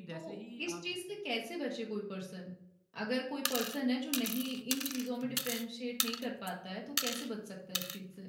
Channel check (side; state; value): both; identical; correlation 1.00